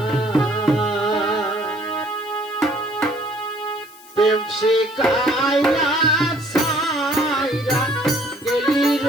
প্রেম শিখাইয়া সাইরা গেলি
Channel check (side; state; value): left; noise; hiss, 23 dB below the sound